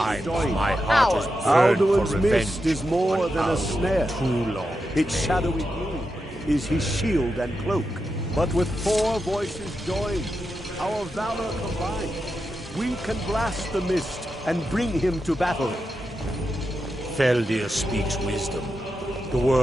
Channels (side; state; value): both; normal; correlation 0.88